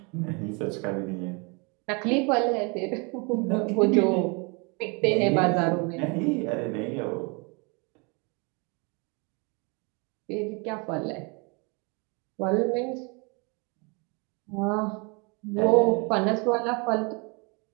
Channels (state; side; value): quieter; left; 31.5 dB